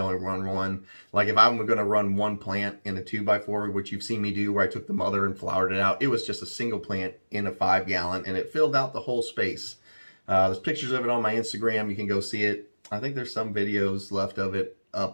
only run 1. Like if I'm going to run 1 plant in a 2x4, which you've seen me do where I took the mother and flowered it out, it was just a single plant in a 5-gallon and it filled out the whole space. There's pictures of it on my Instagram. You can go see it. I think there's some videos left of it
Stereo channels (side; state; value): both; inverted; correlation -1.00